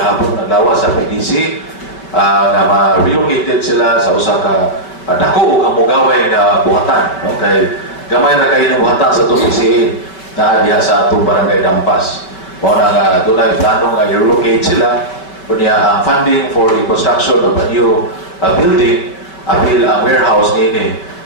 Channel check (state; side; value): late; right; 5.3 ms